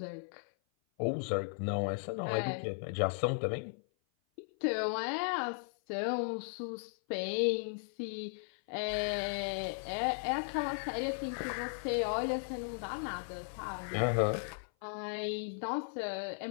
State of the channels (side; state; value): right; silent; 54 dB below the other